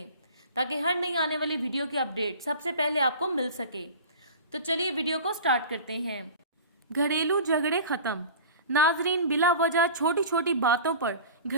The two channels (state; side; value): inverted; both; correlation -0.38